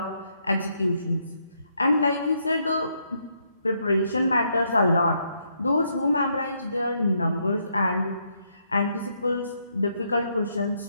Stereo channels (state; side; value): inverted; both; correlation -0.76